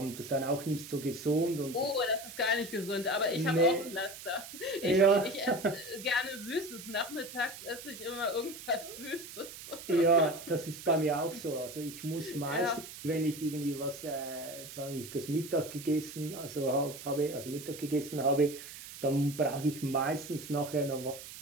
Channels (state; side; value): noise; right; hiss, 13 dB below the sound